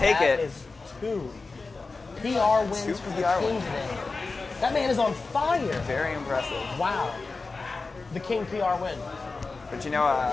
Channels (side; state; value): right; quieter; 3.9 dB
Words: it. That is two PR wins Two for the PR King wins. today. That man is on fire. Very impressive. Wow. The King PR win. But you know,